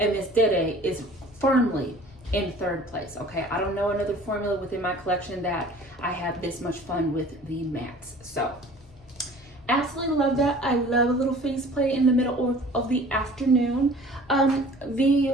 Miss Dede is firmly in third place. Okay, I don't know another formula within my collection that I have this much fun with the mattes. So absolutely love that. I love a little face play in the middle of the afternoon.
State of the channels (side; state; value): both; normal; correlation 0.47